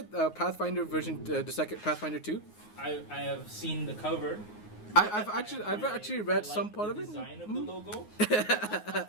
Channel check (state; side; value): late; right; 9.5 ms